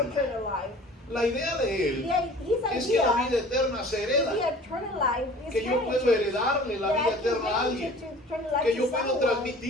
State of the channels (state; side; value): normal; both; correlation 0.46